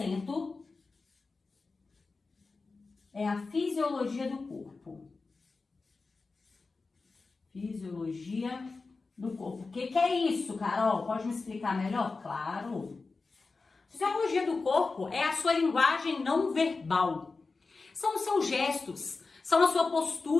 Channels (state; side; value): quieter; right; 4.0 dB